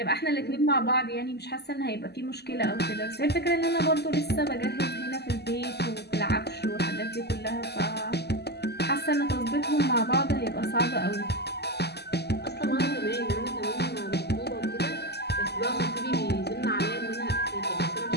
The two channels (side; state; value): right; late; 0.48 ms